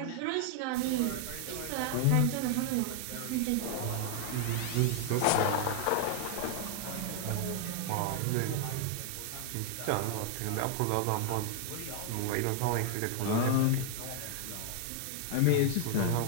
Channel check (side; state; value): both; different; correlation 0.00